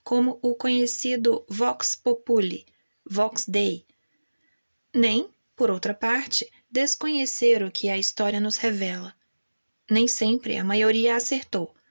como o conhecido vox populi, vox dei, nem, por outra parte, desconhecer o que a história nos revela. Nem sempre a maioria acertou,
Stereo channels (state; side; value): inverted; both; correlation -1.00